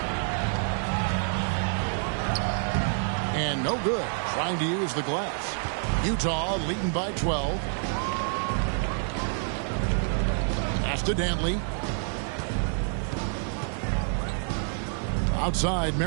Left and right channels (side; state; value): left; silent; 60 dB below the other